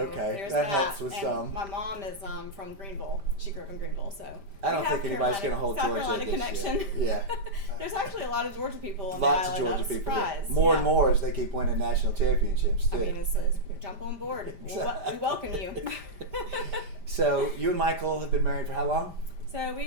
there's that helps with and some. My mom is from Greenville. She grew up in Greenville. So I we don't have think anybody's going to hold South Georgia Carolina against connection. you. Yeah. There's actually a lot of Georgia people on Lots the of island. Georgia I'm people. surprised. More and more as they keep winning national championships too. I mean, it's jump on board. We welcome you. So you and Michael have been married for how long? So we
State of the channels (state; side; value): late; left; 5.1 ms